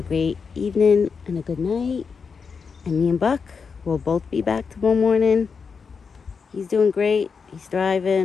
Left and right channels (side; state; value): right; quieter; 5.6 dB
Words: great evening, and a good night. And me and Buck will both be back tomorrow morning. He's doing great. He's